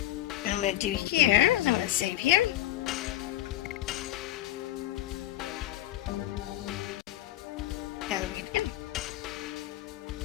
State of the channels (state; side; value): quieter; right; 14.4 dB